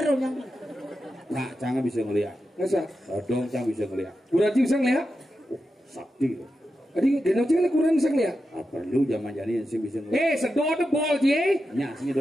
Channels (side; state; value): both; normal; correlation 0.89